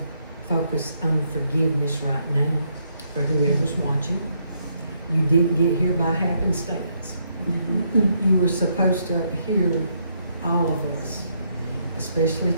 focus on forgiveness right now for whoever's watching. You didn't get here by happenstance. You were supposed to hear all of us, especially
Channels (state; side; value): inverted; both; correlation -0.75